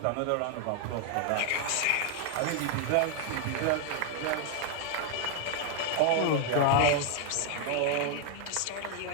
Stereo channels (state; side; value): different; both; correlation 0.00